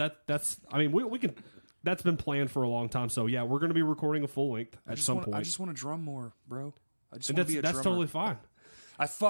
that's. I mean, we can. That's been planned for a long time. So yeah, we're going to be recording a full length at some point. I just want to drum more, bro. I just and want to be a that's drummer. totally fine. I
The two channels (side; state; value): both; inverted; correlation -1.00